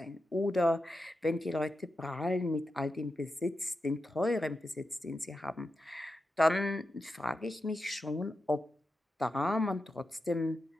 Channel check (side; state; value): both; normal; correlation 0.89